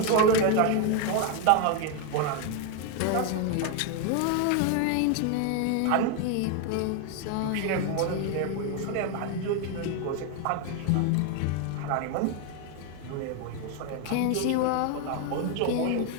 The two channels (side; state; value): both; different; correlation 0.01